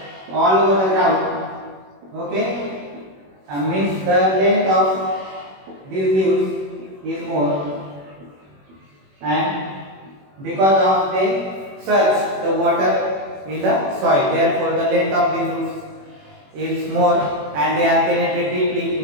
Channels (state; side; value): late; left; 21 ms